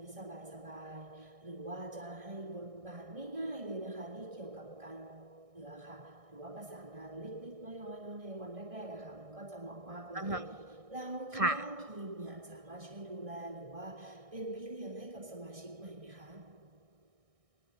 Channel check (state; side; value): late; left; 1.6 ms